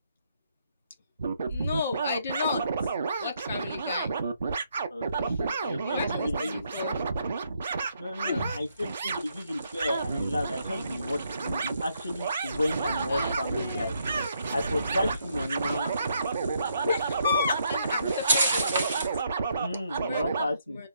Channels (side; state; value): both; inverted; correlation -0.75